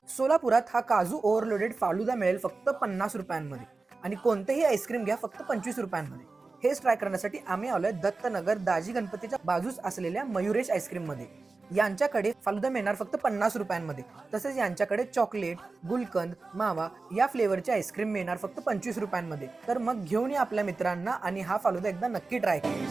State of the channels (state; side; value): quieter; left; 3.8 dB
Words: सोलापुरात हा काजू ओव्हरलोडेड फालुदा मिळेल फक्त 50 रुपयांमध्ये आणि कोणतेही आईस्क्रीम घ्या फक्त 25 रुपयांमध्ये. हेच ट्राय करण्यासाठी आम्ही आलोय दत्तनगर दाजी गणपतीच्या बाजूस असलेल्या मयुरेश आईस्क्रीम मध्ये. यांच्याकडे फालुदा मिळणार फक्त 50 रुपयांमध्ये. तसेच यांच्याकडे चॉकलेट, गुलकंद, मावा या फ्लेवरचे आईस्क्रीम मिळणार फक्त 25 रुपयांमध्ये. तर मग घेऊन या आपल्या मित्रांना आणि हा फालुदा एकदा नक्की ट्राय